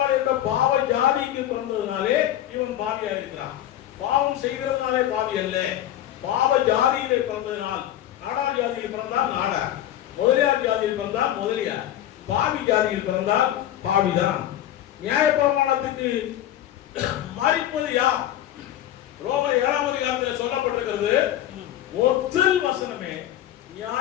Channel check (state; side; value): quieter; right; 12.2 dB